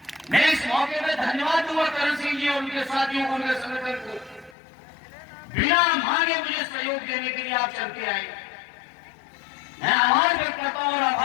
मैं इस मौके पर धन्यवाद दूंगा करण सिंह जी और उनके साथियों को, उनके संगठन को, बिना मांगे मुझे सहयोग देने के लिए आप चल के आए। मैं आभार व्यक्त करता हूं और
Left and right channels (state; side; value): drops out; right; at 4.5 s